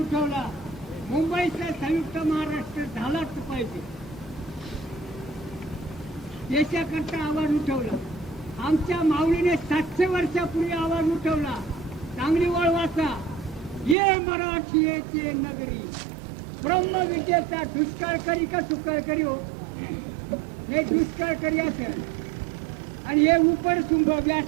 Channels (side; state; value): left; drops out; at 14.0 s